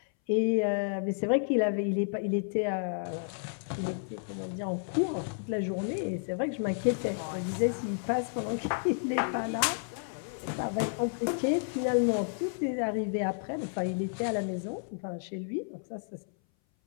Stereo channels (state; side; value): silent; right; 57 dB below the other